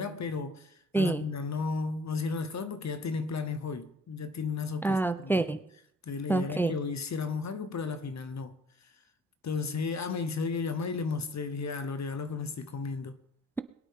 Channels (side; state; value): both; normal; correlation 0.57